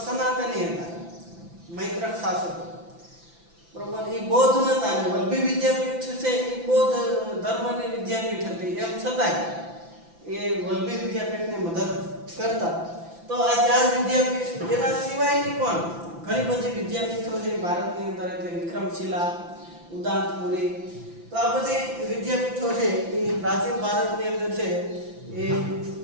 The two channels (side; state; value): left; late; 5.9 ms